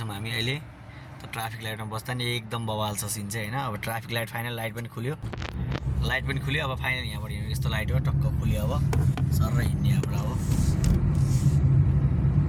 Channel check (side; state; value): both; identical; correlation 1.00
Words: हामी अहिले, त ट्राफिक लाइटमा बस्दा नि एकदम बवाल छ सिन चाहिँ होइन। अब ट्राफिक लाइट फाइनल, लाइट पनि खुल्यो, लाइट पनि खुल्यो। अब फाइनल यहाँबाट हिँड्यो, यस्तो लाइट हो टक्क खुल्यो। अब सर हिँड्ने यहाँबाट अब